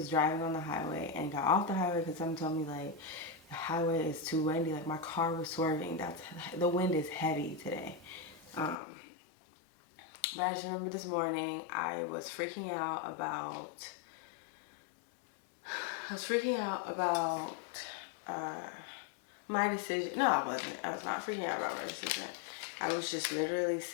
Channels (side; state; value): right; drops out; at 8.8 s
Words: driving on the highway and got off the highway because someone told me like the highway is too windy. Like my car was swerving. The wind is heavy today. But I just remember this morning I was freaking out about my decision. No, I wasn't. I was not freaking out about my decision. I was just literally